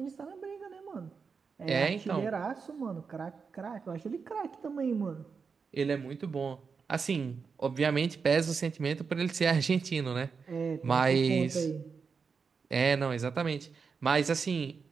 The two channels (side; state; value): left; quieter; 5.5 dB